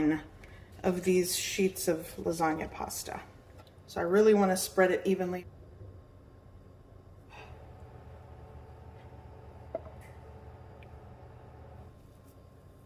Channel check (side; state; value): both; identical; correlation 1.00